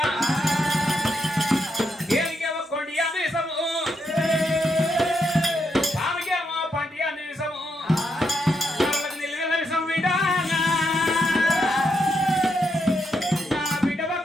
ఏమికేమో కొండి అన్నిసము ఆమెకేమో పంటి అన్నిసము నిల్వెళ్ళ విషం బిడ్డ బిడ్డ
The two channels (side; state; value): both; normal; correlation 0.80